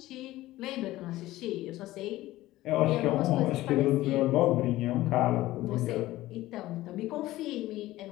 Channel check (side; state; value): right; quieter; 16.5 dB